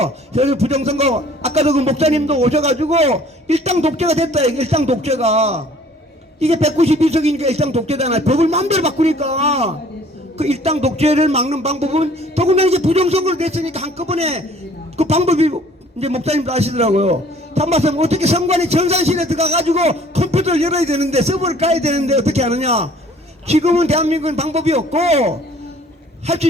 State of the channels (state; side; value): normal; both; correlation 0.54